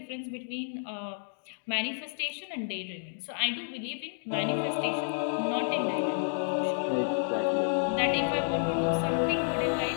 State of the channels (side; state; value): right; silent; digital silence